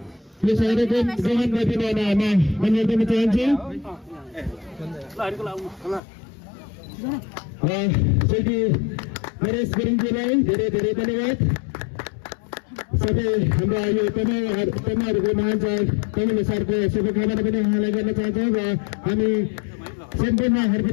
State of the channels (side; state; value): right; drops out; at 6.0 s